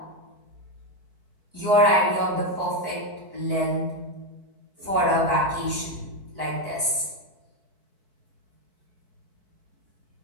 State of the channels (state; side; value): late; left; 4.6 ms